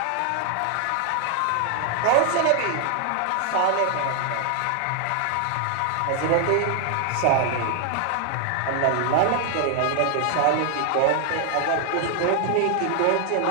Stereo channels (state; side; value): different; both; correlation 0.00